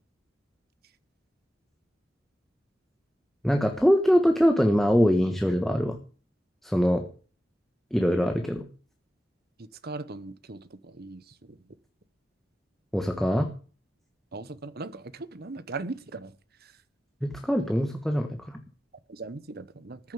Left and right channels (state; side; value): normal; both; correlation 0.94